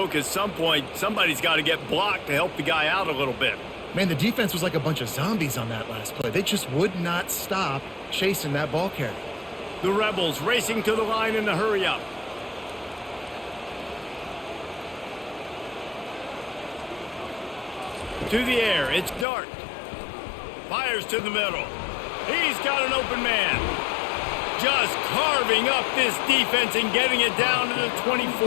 at some point, somebody's got to get blocked to help the guy out a little bit. Man, the defense was like a bunch of zombies on that last play. They just would not stop chasing that ball carrier. The Rebels racing to the line in a hurry up. To the air, it's Dart. Fires to the middle. He's got an open man. Just carving up this defense and getting it down to the 24.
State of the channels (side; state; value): right; drops out; at 19.2 s